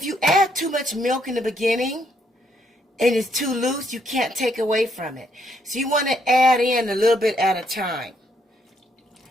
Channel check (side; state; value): both; normal; correlation 0.72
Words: you add too much milk in the beginning and it's too loose, you can't take away from it. So you want to add in a little bit at a time.